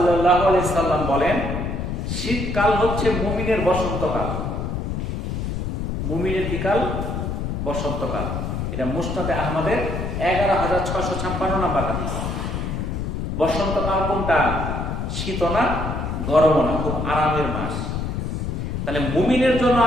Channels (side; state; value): left; noise; rumble, 3 dB below the sound